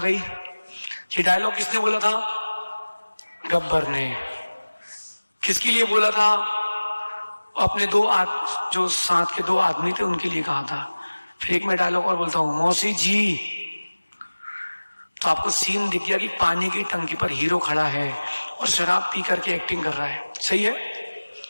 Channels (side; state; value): both; inverted; correlation -1.00